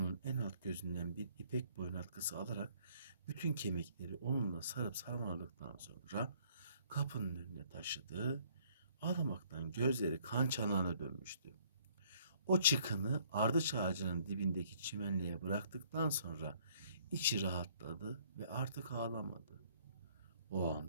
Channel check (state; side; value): inverted; both; correlation -0.61